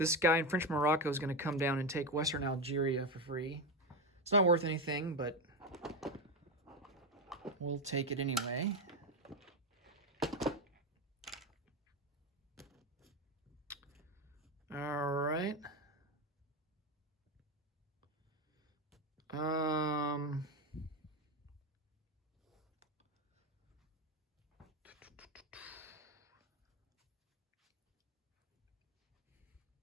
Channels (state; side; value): normal; both; correlation 0.13